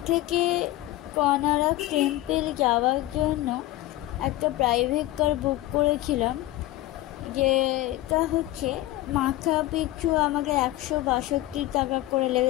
থেকে কোনারক টেম্পল যাওয়ার জন্য একটা প্রাইভেট কার বুক করেছিলাম, যেটা হচ্ছে মাথা পিছু আমাকে 162 টাকা করে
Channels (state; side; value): quieter; right; 16.1 dB